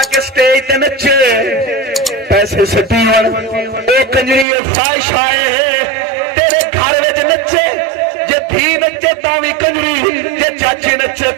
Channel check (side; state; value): left; drops out; at 4.5 s